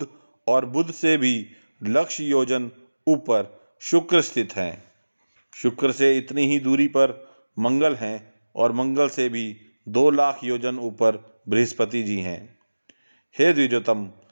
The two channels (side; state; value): both; inverted; correlation -1.00